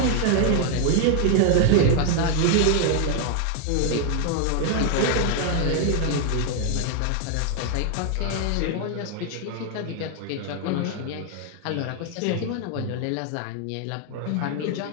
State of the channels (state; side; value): different; both; correlation 0.00